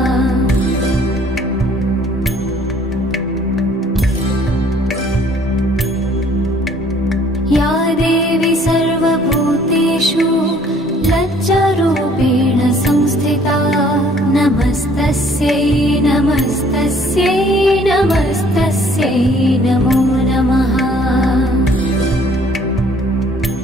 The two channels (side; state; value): both; normal; correlation 0.58